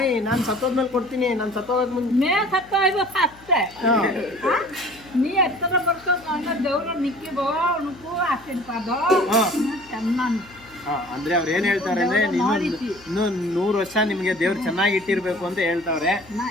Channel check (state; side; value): noise; left; hum, 24 dB below the sound